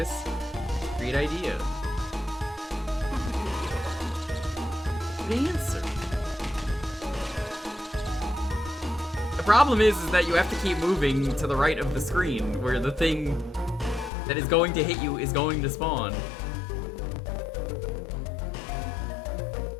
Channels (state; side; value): drops out; right; at 14.1 s